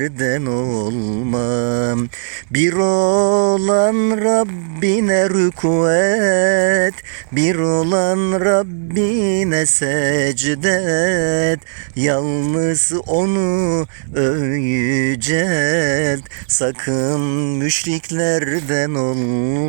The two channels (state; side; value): silent; left; 68 dB below the other